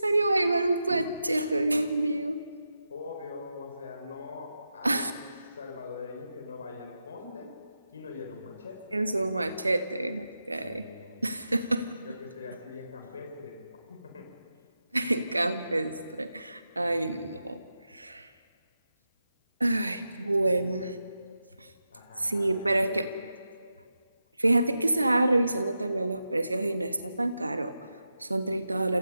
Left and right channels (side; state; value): both; inverted; correlation -0.89